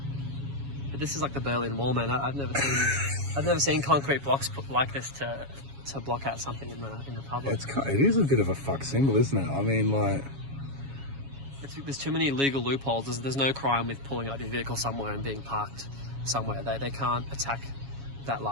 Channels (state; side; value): late; left; 7.2 ms